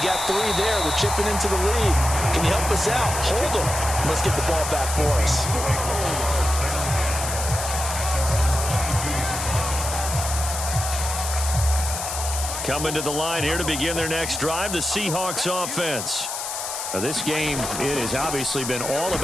got 3 there. We're chipping into the lead. Can you help us out? Hold them. Let's get the ball back for us. Coming to the line here to begin their next drive, the Seahawks offense. Now, this game, it has obviously been all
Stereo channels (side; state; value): left; noise; hiss, 5 dB below the sound